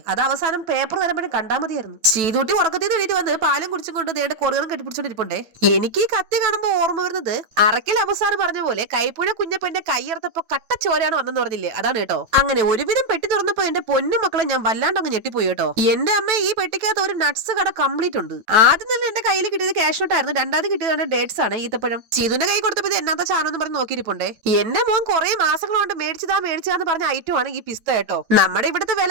അത് അവസാനം പേപ്പർ വരുമ്പോഴും കണ്ടാൽ മതിയായിരുന്നു. ശ്രീതുട്ടി ഉറക്കത്തിൽ നിന്ന് എണീറ്റ് വന്ന് പാലും കുടിച്ചും കൊണ്ട് ദേണ്ട കൊറിയറും കെട്ടിപ്പിടിച്ചോണ്ടിരിപ്പുണ്ടേ. എനിക്ക് ഈ കത്തി കാണുമ്പോ ഓർമ്മ വരുന്നത് അറക്കൽ അവസാനം പറഞ്ഞ പോലെ കൈപ്പുഴ കുഞ്ഞപ്പന്റെ കൈയർത്തപ്പോ കട്ടച്ചോരാണ് വന്നെന്ന് പറഞ്ഞില്ലേ, അതാണ് കേട്ടോ. അങ്ങനെ ഒരുവിധം പെട്ടി തുറന്നപ്പോ എന്റെ പൊന്നു മക്കളെ ഞാൻ വല്ലാണ്ട് അങ്ങ് ഞെട്ടിപ്പോയി കേട്ടോ. എന്റെ അമ്മ ഈ പെട്ടിക്കകത്ത് ഒരു നട്ട്സ് കട കംപ്ലീറ്റ് ഉണ്ട്. ആദ്യം തന്നെ എന്റെ കയ്യിൽ കിട്ടിയത് ക്യാഷ് നോട്ടായിരുന്നു. രണ്ടാമത് കിട്ടിയത് ഡേറ്റ്സ് ആണ്, ഈത്തപ്പഴം. ചീതുന്റെ കൈ കൊടുത്തപ്പോ ഇത് എന്നാത്ത ചാനോന്ന് പറഞ്ഞ് നോക്കിയിരിപ്പുണ്ടേ. എന്റെ മോൻ കുറെ മാസങ്ങൾ കൊണ്ട് മേടിച്ചതാന്ന് പറഞ്ഞ ഐറ്റം ആണ് ഈ പിസ്ത കേട്ടോ. നമ്മുടെ ഇവിടുത്തെ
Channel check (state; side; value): late; left; 9.1 ms